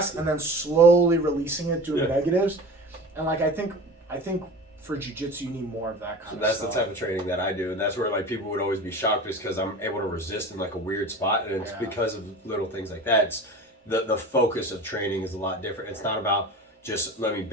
and then slowly releasing it, doing negatives. And like I think for jiu-jitsu, you need more of that kind of stuff. So that's the type of training that I do, and that's where like people would always be shocked just because I'm able to resist in like a weird spot, and it's because of little things like that. It's the focus of training is a lot different. It's not about just let me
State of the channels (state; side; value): normal; both; correlation 0.35